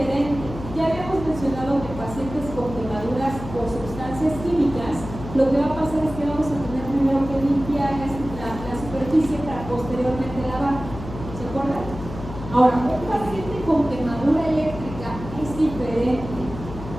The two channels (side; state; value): left; noise; hum, 11 dB below the sound